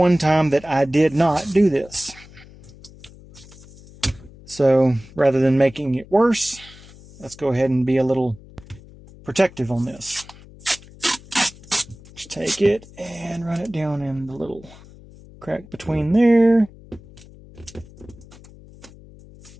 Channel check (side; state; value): left; noise; hum, 21 dB below the sound